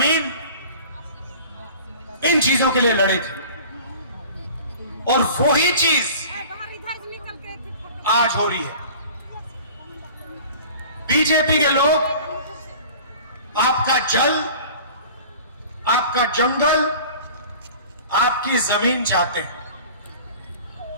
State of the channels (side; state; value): both; inverted; correlation -0.43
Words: इन चीजों के लिए लड़े थे। और वही चीज आज हो रही है। बीजेपी के लोग आपका जल, आपका जंगल, आपकी जमीन चाहते हैं,